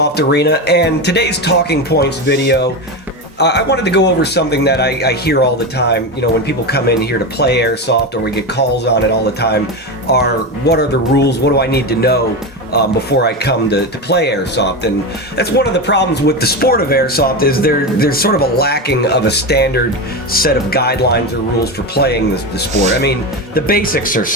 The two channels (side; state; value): both; normal; correlation 0.18